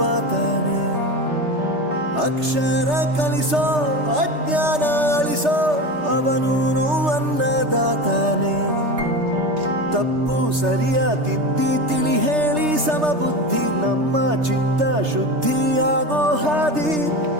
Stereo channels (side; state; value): left; late; 3.3 ms